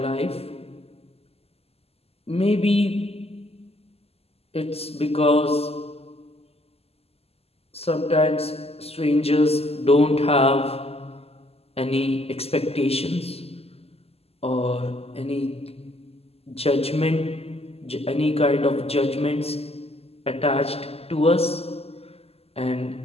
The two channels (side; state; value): right; late; 0.29 ms